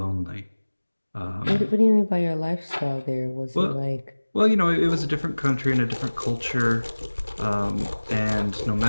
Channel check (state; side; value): inverted; both; correlation -1.00